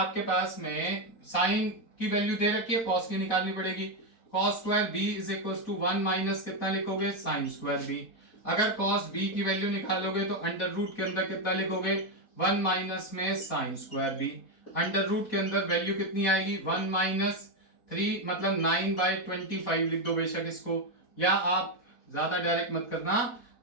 पास में साइन की वैल्यू दे रखी है, cos की निकालनी पड़ेगी। cos square b is equals to 1 minus कितना लिखोगे? Sine square b। अगर cos b की वैल्यू निकालोगे तो अंडर रूट के अंदर कितना लिखोगे? 1 माइनस में sine square b। Under root के अंदर वैल्यू कितनी आएगी? 1 माइनस 3 मतलब 9/25 लिख दो बेशक इसको, या आप ज्यादा डायरेक्ट मत करना,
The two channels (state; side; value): late; right; 4.1 ms